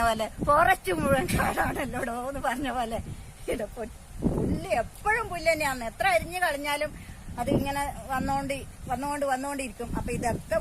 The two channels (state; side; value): identical; both; correlation 1.00